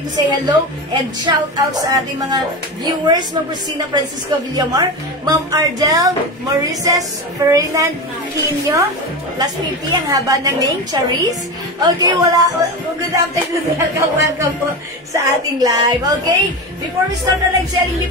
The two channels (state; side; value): normal; both; correlation 0.22